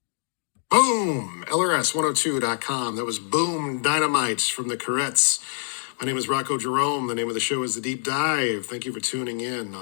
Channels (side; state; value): right; silent; digital silence